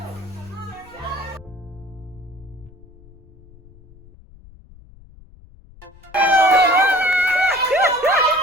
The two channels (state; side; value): noise; left; rumble, 23 dB below the sound